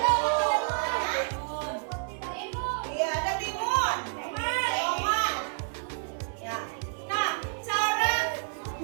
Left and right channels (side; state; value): left; silent; 58 dB below the other